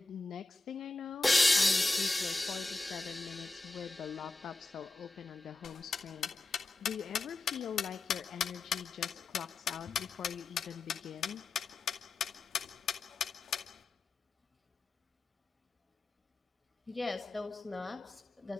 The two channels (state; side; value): quieter; right; 3.4 dB